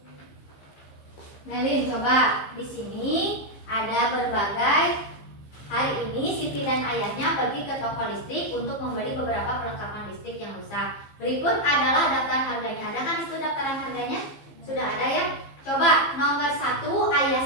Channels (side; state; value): right; late; 15 ms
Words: Melin, coba. Di sini ada berbagai. Hari ini Siti dan ayahnya pergi ke toko listrik untuk membeli beberapa perlengkapan listrik yang rusak. Berikut adalah daftar harganya. Ada kan itu daftaran harganya? Sudah ada ya? Coba nomor 1, ayah